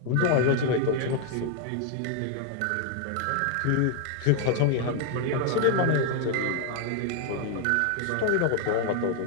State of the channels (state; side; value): different; both; correlation 0.00